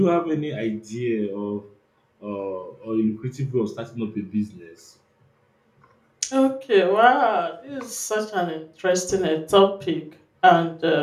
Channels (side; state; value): both; identical; correlation 1.00